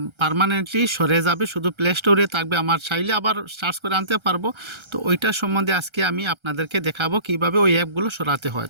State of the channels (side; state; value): left; late; 1.3 ms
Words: পার্মানেন্টলি সরে যাবে, শুধু প্লে স্টোরে থাকবে, আমার চাইলে আবার সার্চ করে আনতে পারবো। তো ওইটার সম্বন্ধে আজকে আমি আপনাদেরকে দেখাবো কিভাবে ওই অ্যাপগুলো সরাতে হয়।